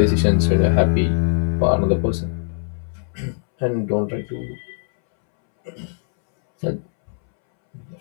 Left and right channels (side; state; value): right; silent; 65 dB below the other